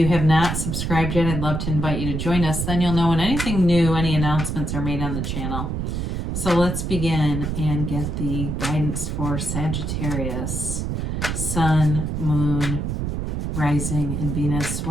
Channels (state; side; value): noise; right; rumble, 2 dB below the sound